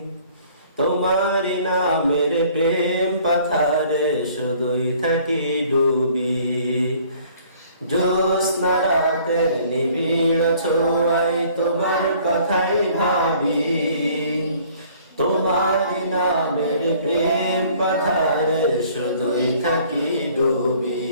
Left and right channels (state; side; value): inverted; both; correlation -0.55